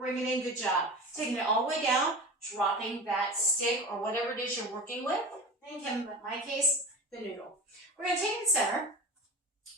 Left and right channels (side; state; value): both; normal; correlation 0.30